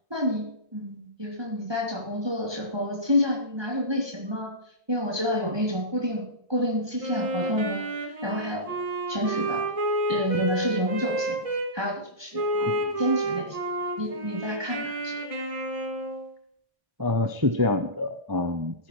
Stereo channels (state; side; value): late; left; 1.2 ms